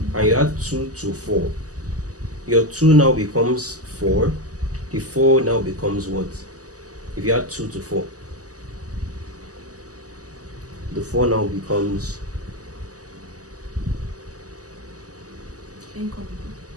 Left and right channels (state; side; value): late; left; 0.67 ms